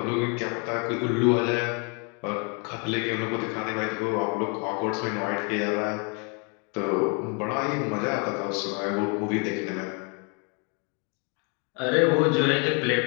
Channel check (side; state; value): right; quieter; 34.9 dB